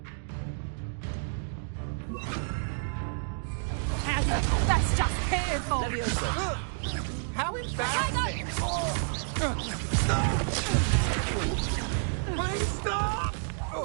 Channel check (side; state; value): left; silent; digital silence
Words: That's just careful! Levioso. How embarrassing! Please stop!